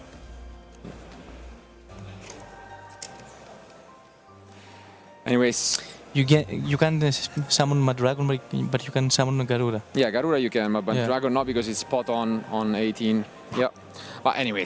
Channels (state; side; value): identical; both; correlation 1.00